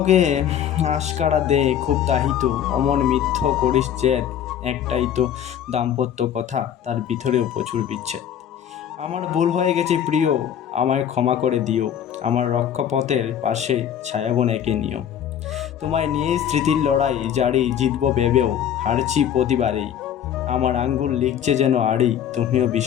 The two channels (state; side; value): quieter; right; 9.6 dB